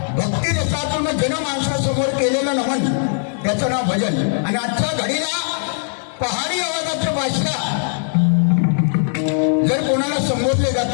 भक्ती रसातून जनमानसासमोर केलेलं नमन त्याचं नाव भजन. आणि आजच्या घडीला पहाडी आवाजाचं बादशाह जर कोणाला संबोधले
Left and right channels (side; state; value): right; silent; 66 dB below the other